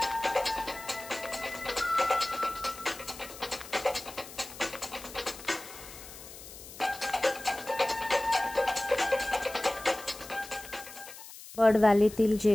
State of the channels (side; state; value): left; noise; hiss, 15 dB below the sound